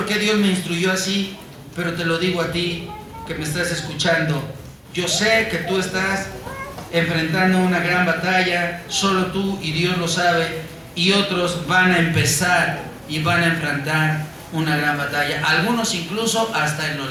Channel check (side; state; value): both; identical; correlation 1.00